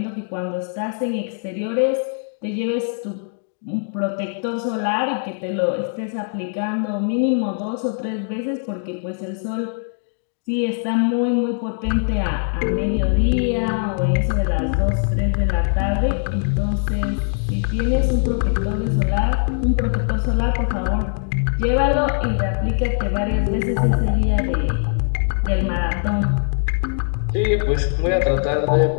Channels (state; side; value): silent; right; digital silence